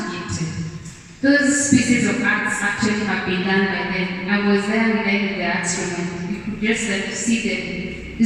gifted. Those pieces of arts actually have been done by them. I was there with them in the arts room, and you could just see them.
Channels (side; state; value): both; identical; correlation 1.00